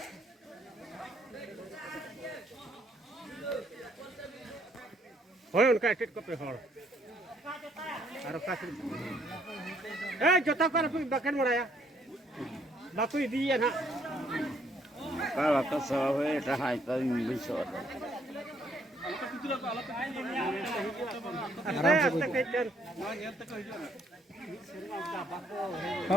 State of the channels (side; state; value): both; normal; correlation 0.67